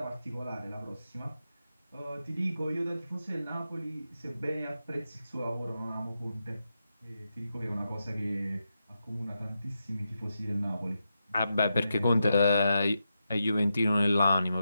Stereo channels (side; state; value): both; inverted; correlation -0.87